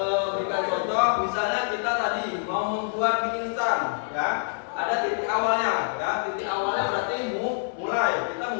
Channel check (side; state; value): right; silent; digital silence